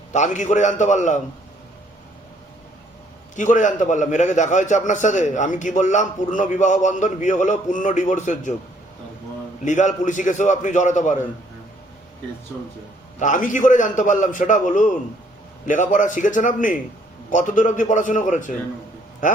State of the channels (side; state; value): both; normal; correlation 0.64